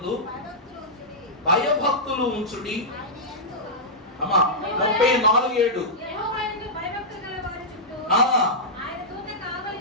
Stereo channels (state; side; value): normal; both; correlation -0.11